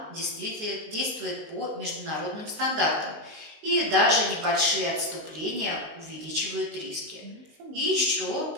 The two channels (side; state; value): left; late; 19 ms